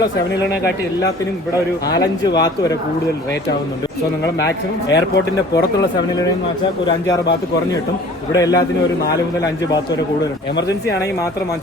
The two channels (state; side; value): normal; both; correlation 0.48